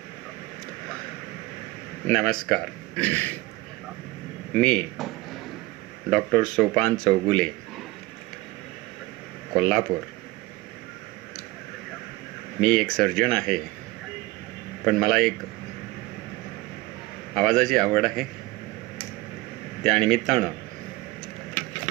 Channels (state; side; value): quieter; left; 20.3 dB